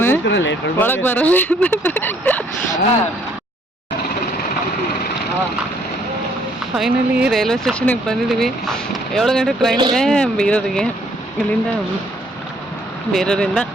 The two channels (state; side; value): normal; both; correlation 0.65